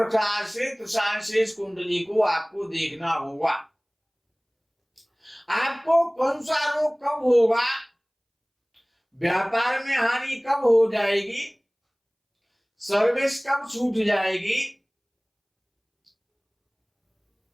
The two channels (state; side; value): identical; both; correlation 1.00